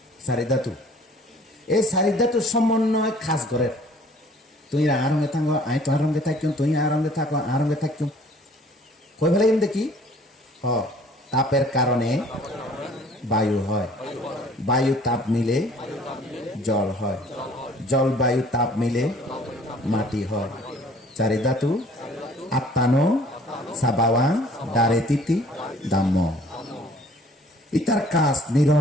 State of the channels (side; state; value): both; normal; correlation 0.54